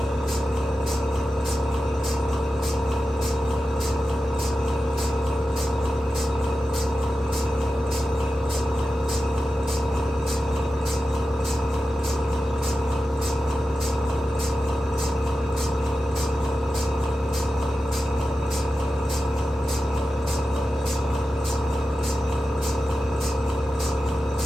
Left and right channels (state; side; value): normal; both; correlation 0.92